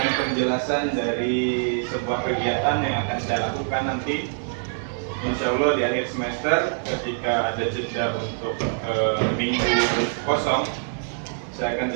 penjelasan dari sebuah kegiatan yang akan saya lakukan nanti. Insya Allah di akhir semester ketika ada jeda untuk minggu kosong, saya akan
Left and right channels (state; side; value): silent; left; 62 dB below the other